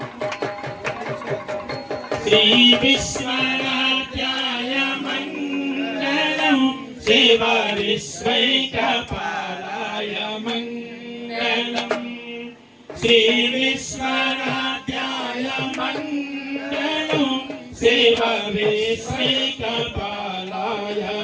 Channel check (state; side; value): identical; both; correlation 1.00